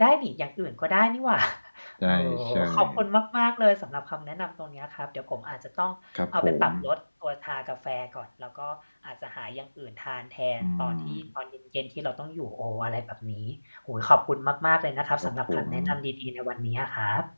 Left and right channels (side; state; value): both; inverted; correlation -1.00